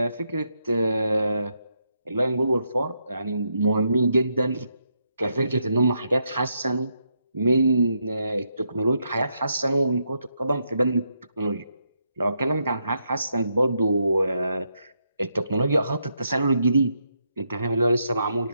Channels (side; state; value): both; inverted; correlation -0.80